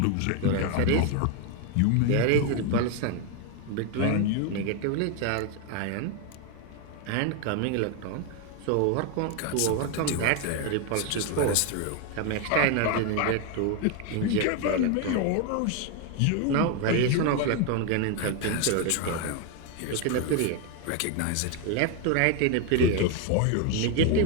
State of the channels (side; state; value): both; different; correlation 0.01